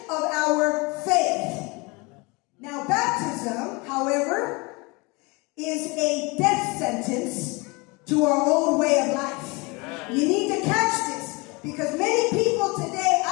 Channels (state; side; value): quieter; right; 26.7 dB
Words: of our faith. Now, baptism, however, is a death sentence to our old way of life. You need to catch this, because many people today,